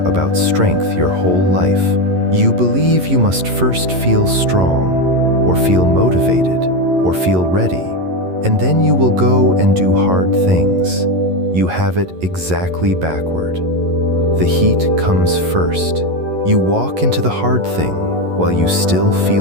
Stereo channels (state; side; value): late; left; 11 ms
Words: about strength your whole life. You believe you must first feel strong, or feel motivated, or feel ready, and then you will go and do hard things. You have it exactly backward. The heat comes first. You walk into the hard thing while you still